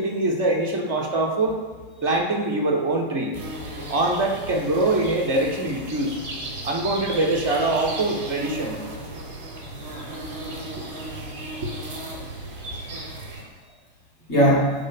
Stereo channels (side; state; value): left; late; 2.1 ms